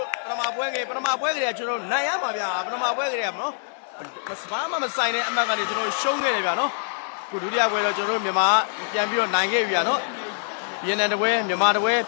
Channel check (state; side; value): silent; right; 55 dB below the other